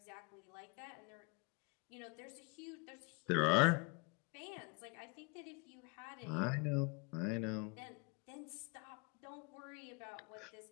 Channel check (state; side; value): quieter; right; 30.4 dB